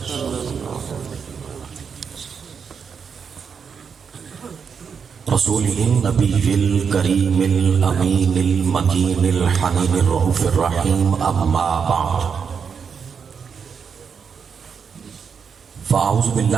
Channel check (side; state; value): left; quieter; 6.4 dB